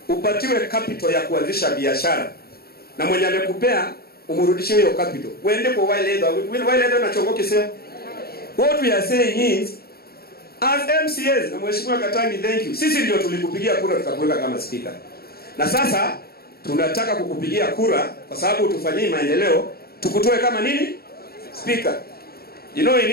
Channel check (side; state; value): right; late; 0.45 ms